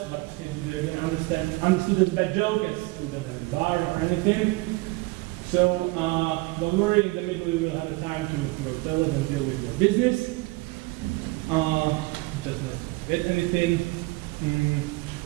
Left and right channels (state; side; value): quieter; left; 23.1 dB